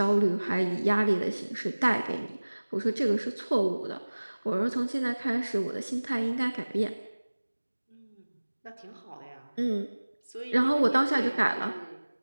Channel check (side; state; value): both; inverted; correlation -1.00